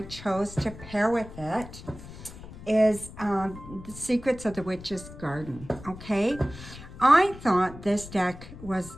chose to pair with it is The Secrets of the Witch's Garden, okay? I thought this deck was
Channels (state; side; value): noise; left; rumble, 15 dB below the sound